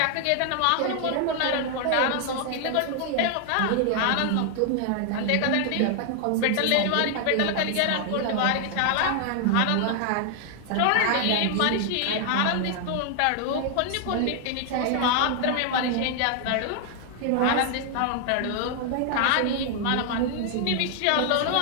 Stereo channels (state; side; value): different; both; correlation 0.00